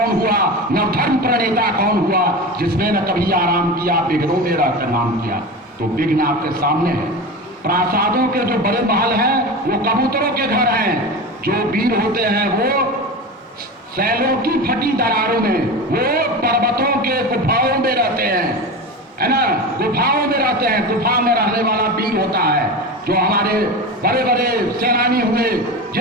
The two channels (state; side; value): normal; both; correlation 0.26